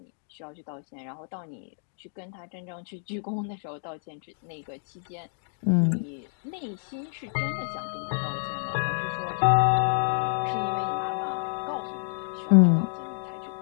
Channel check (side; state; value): right; silent; digital silence